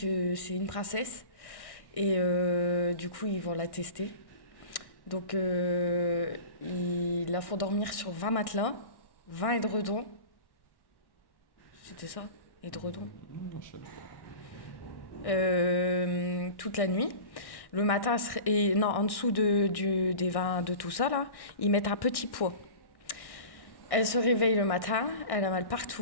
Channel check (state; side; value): late; right; 1.6 ms